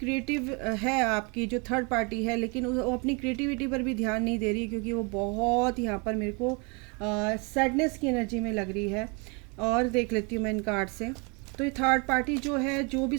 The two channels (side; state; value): left; quieter; 32.1 dB